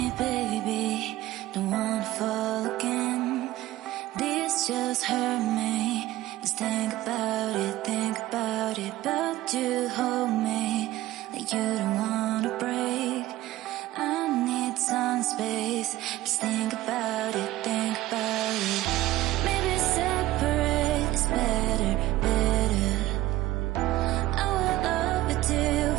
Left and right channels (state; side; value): quieter; left; 15.9 dB